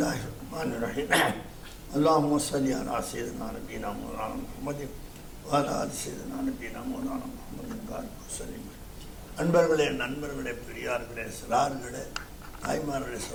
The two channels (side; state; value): both; identical; correlation 1.00